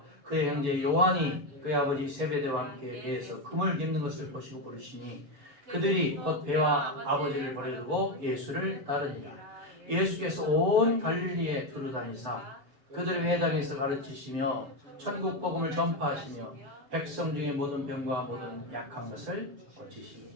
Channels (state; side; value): late; left; 7.0 ms